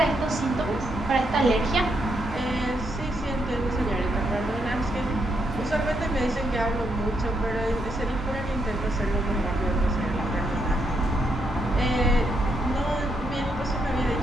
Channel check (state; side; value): normal; both; correlation 0.78